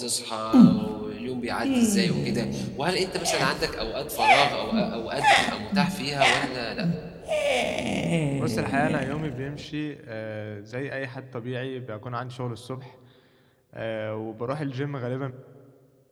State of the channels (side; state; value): both; identical; correlation 1.00